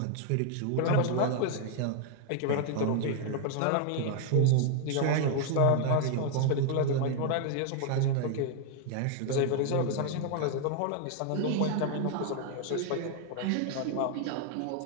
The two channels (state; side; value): different; both; correlation 0.00